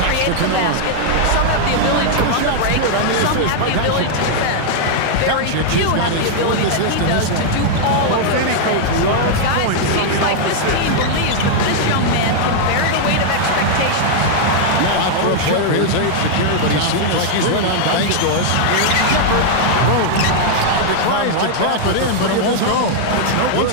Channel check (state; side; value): different; both; correlation -0.01